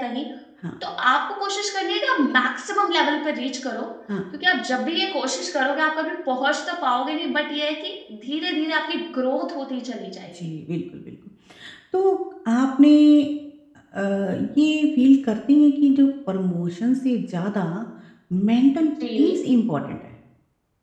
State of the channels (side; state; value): both; identical; correlation 1.00